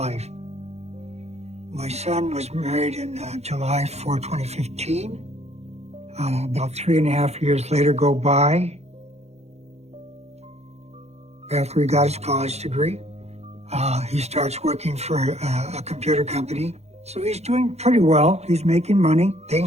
My son was married in July 4, 2015. About 3.5 years later go by. After he got his college degree, he starts working for a computer company. So he's doing pretty well. He's making money.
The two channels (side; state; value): left; late; 0.31 ms